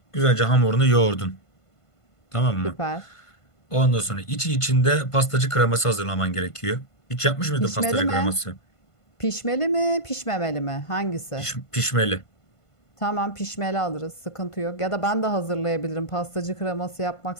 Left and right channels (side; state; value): right; late; 1.5 ms